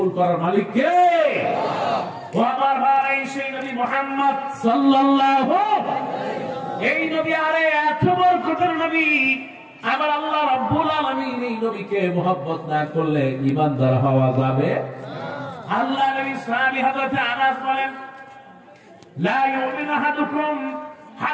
করার মালিক কে? ও আমার ভাই, সেই নবী মুহাম্মদ সাল্লাল্লাহু এই নবী, আরে এত বরকতের নবী। আবার আল্লাহ রাব্বুল আলামিন এই নবীকে মুহাব্বত না করলে ঈমানদার হওয়া যাবে? আল্লাহ নবী সাহাবী হযরত আনাস বলেন, লা ইউমিনু আহাদুকুম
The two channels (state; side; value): identical; both; correlation 1.00